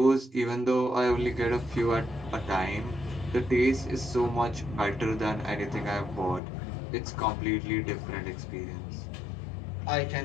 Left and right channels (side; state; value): right; drops out; at 6.4 s